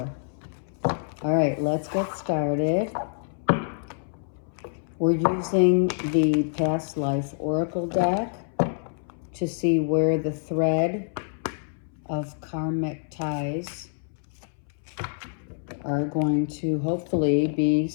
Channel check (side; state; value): right; silent; 61 dB below the other